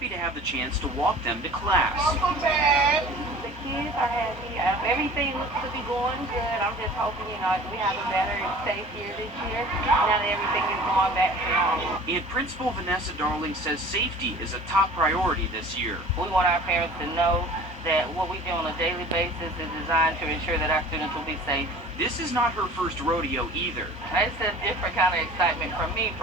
to have the chance to walk them to class. Welcome back. The kids are happy. Everything looks to be going good. I'm just hoping, we have a better and safe year this year. Now that everything is going back to normal. And Principal Vanessa Darling says safety is a top priority this year. We want our parents to know that what we do on a daily basis is designed to ensure that our students will be safe. This is not her first rodeo either. It's a different kind of excitement for me.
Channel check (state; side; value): normal; both; correlation 0.44